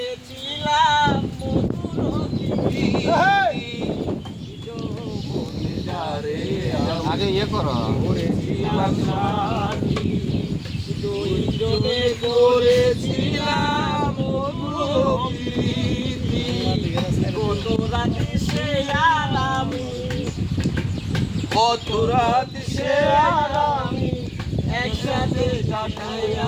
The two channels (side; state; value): both; identical; correlation 1.00